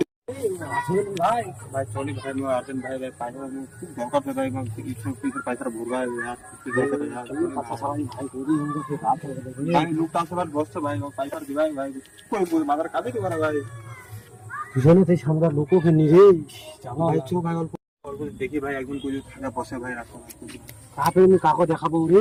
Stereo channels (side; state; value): both; identical; correlation 1.00